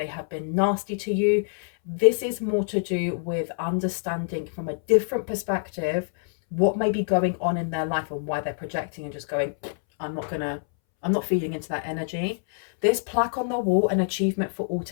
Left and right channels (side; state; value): right; silent; 61 dB below the other